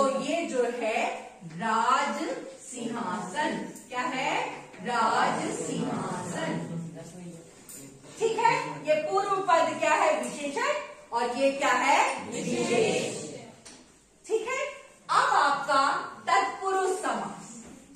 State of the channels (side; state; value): both; identical; correlation 1.00